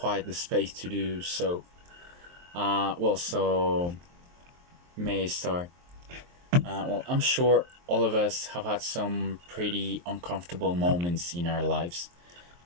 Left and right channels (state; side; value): late; left; 23 ms